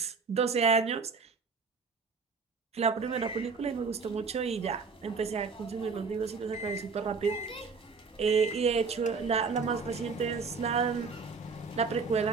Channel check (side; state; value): left; quieter; 5.0 dB